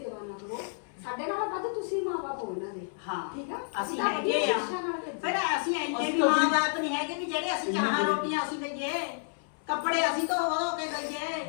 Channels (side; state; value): right; silent; 56 dB below the other